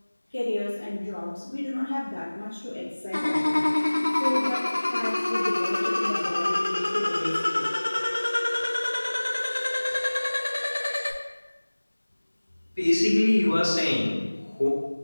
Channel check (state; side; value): inverted; both; correlation -1.00